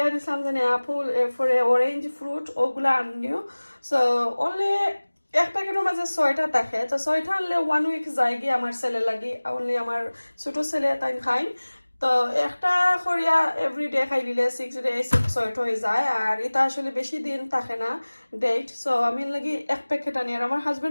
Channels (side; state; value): both; inverted; correlation -1.00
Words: দিছিলাম যে আপেল এরপরে অরেঞ্জ ফ্রুট ওগুলা আনিও। সো অনলি এক প্যাকেটের মাঝে 6টা থাকে, তো 6টা আনলে 1 উইক যায় গিয়ে আমার ছেলে লাগি, অনলি আমার ছোট ছেলে তাই খাই। তো একটা করিয়া এভরিডে খাই দিলে 6 ডে 6 হয়ে যায়, আর এটা আসলে বেশি দিন থাকে না ডেট। সো আমি লাগি এক প্যাকেট আনি, আর আমার